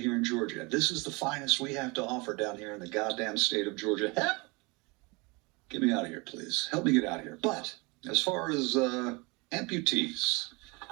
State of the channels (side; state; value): left; quieter; 26.9 dB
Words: in Georgia. This is the finest we have to offer down here in the goddamn state of Georgia. Get me out of here, please. Help me get out of here. But as far as amputees,